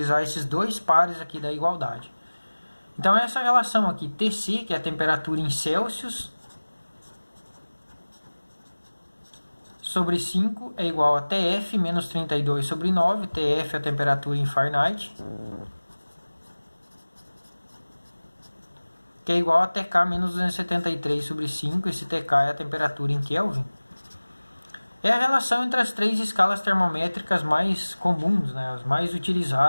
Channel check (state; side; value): inverted; both; correlation -1.00